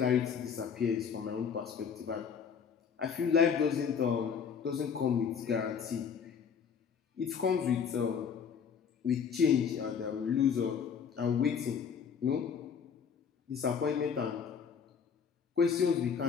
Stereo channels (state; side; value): quieter; right; 6.8 dB